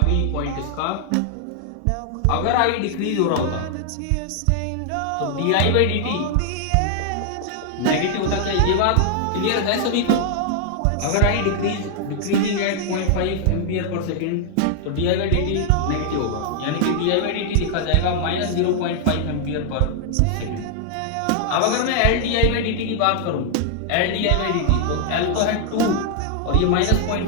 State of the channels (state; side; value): different; both; correlation 0.00